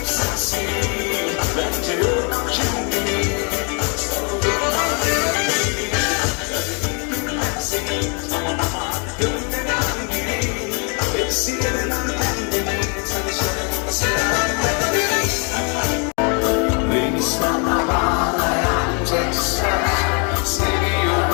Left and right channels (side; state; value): right; quieter; 36.2 dB